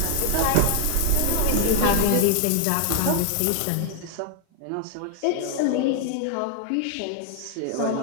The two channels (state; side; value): different; both; correlation 0.00